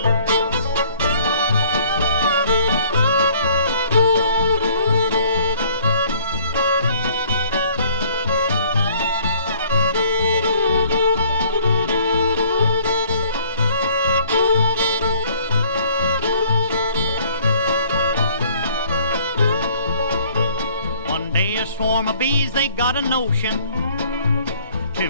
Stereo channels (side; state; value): both; inverted; correlation -0.57